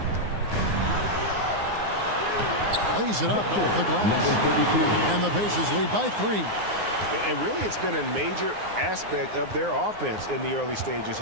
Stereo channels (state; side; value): late; left; 9.6 ms